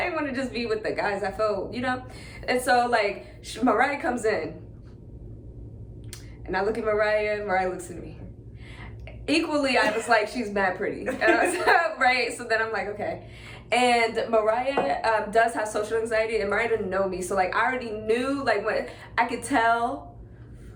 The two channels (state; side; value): identical; both; correlation 1.00